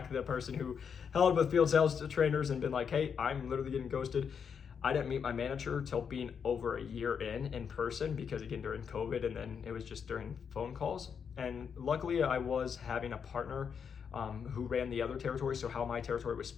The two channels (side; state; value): right; quieter; 6.9 dB